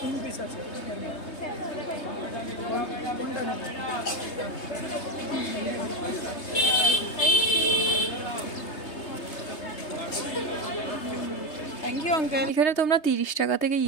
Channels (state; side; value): late; right; 3.3 ms